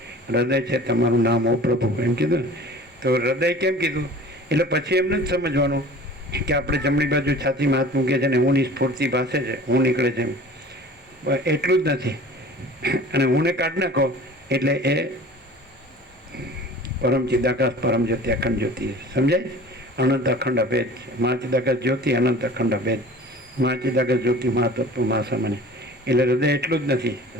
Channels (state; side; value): normal; both; correlation 0.43